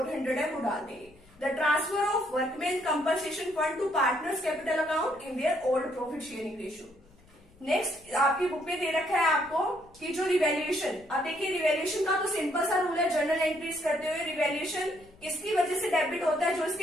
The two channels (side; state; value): left; noise; rumble, 28 dB below the sound